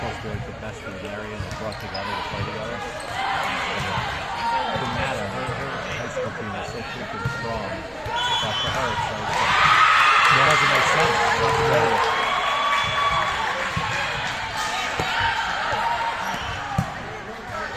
to be like the best in the area and they're brought together to play together. It doesn't matter. Her high school team is so freaking strong that for her it's like, it doesn't make sense.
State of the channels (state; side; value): identical; both; correlation 1.00